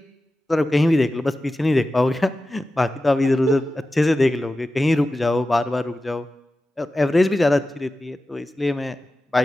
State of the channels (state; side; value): normal; both; correlation 0.94